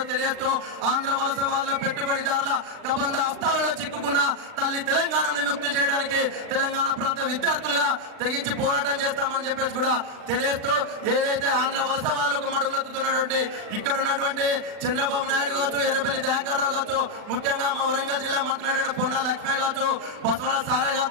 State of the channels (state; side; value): late; left; 39 ms